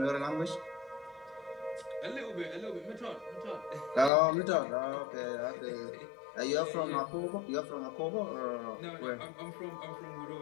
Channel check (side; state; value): right; drops out; at 4.1 s